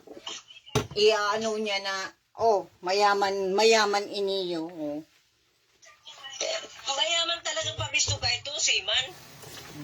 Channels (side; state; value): both; identical; correlation 1.00